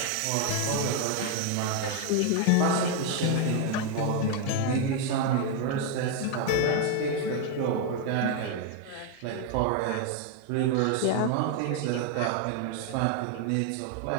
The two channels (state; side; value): different; both; correlation 0.01